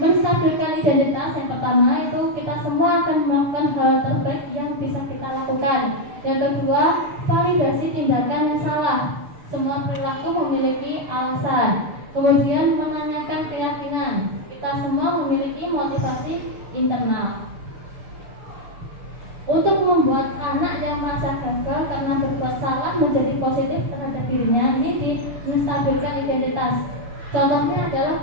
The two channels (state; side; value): late; left; 6.7 ms